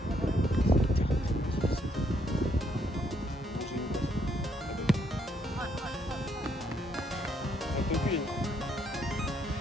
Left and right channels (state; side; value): normal; both; correlation 0.72